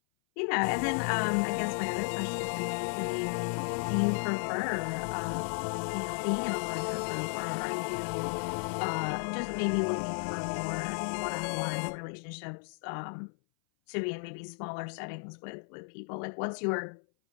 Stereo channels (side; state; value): right; silent; 56 dB below the other